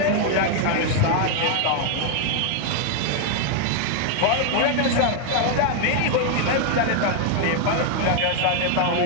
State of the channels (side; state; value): both; different; correlation 0.00